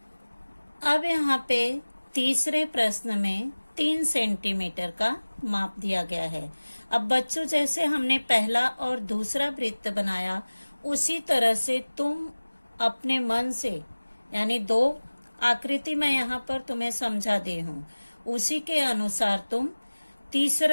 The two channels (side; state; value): both; inverted; correlation -1.00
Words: अब यहाँ पे तीसरे प्रश्न में 3 सेंटीमीटर का माप दिया गया है। अब बच्चों, जैसे हमने पहला और दूसरा वृत्त बनाया, उसी तरह से तुम अपने मन से, यानी 2 आकृति मैं यहाँ पर तुम्हें समझा दी हूँ, उसी के अनुसार तुम